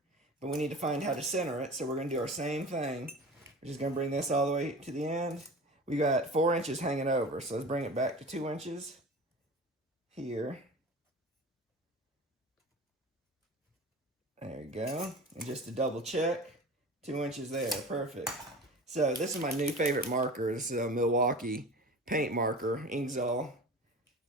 but we need to find how to center it, so we're going to do our same thing. We're just going to bring this all the way to the end. We got 4 inches hanging over, so let's bring it back to 2 inches here. There we go. And just to double check, 2 inches there, perfect. So this is my new favorite marker. This is a Milwaukee paint marker, Inksol,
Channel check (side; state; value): both; normal; correlation 0.36